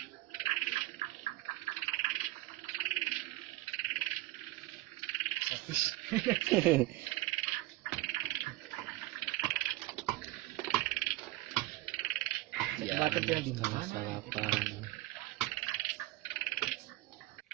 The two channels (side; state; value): left; quieter; 18.2 dB